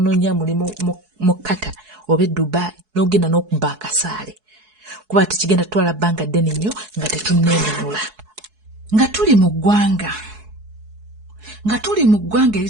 mulimu mu Qatar oba Dubai n'ogenda n'okubba akasaale. Kuba tekigenda tutwala bbanga ddene nnyo nga tetunneenunula. nga tuli mu ggwanga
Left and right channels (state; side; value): late; left; 4.7 ms